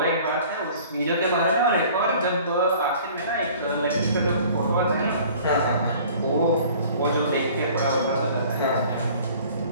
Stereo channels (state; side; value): inverted; both; correlation -0.49